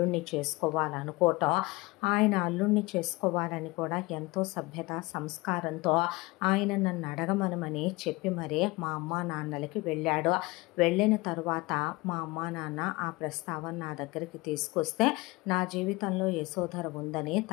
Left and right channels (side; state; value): right; quieter; 22.7 dB